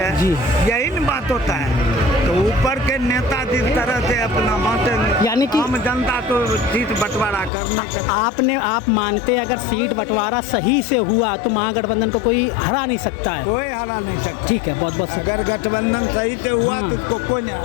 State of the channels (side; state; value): right; drops out; at 7.5 s